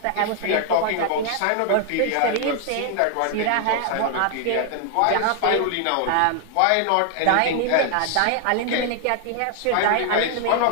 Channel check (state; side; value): different; both; correlation 0.00